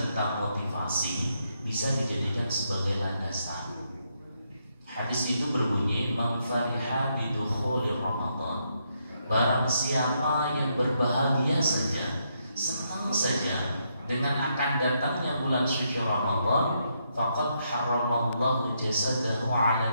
motivasi bisa dijadikan sebagai landasan. Hadis itu berbunyi, man fariha bidukhulir Ramadan, barang siapa yang berbahagia saja, senang saja dengan akan datangnya bulan suci Ramadan, faqad haramallahu jasadahu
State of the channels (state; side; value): inverted; both; correlation -0.78